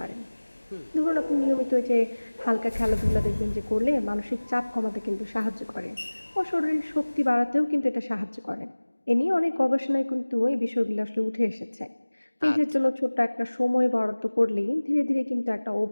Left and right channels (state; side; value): inverted; both; correlation -1.00